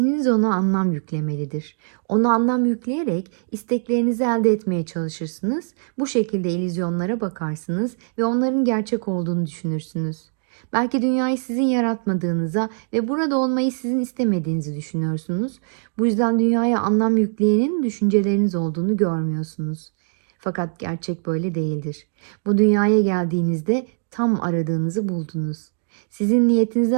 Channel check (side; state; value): left; silent; 64 dB below the other